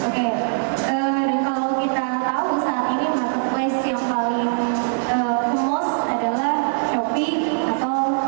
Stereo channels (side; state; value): left; silent; digital silence